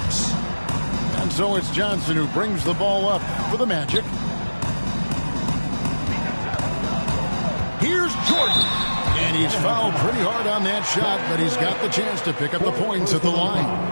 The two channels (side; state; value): both; inverted; correlation -1.00